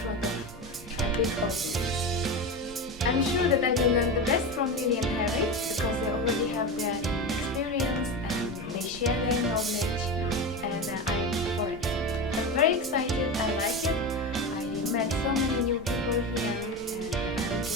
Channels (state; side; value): normal; both; correlation 0.22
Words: front of a big audience. I'm sure that I will learn the best from Lily and Harry because they already have their experience and they share their knowledge and I'm for it. I'm very excited, I like it. I met so many new people here and I'm